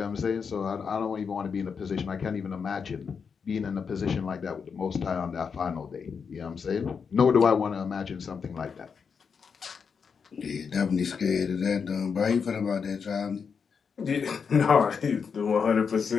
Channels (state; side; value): quieter; right; 6.1 dB